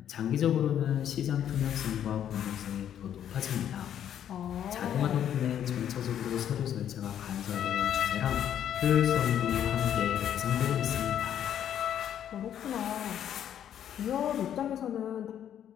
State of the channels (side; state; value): right; quieter; 10.0 dB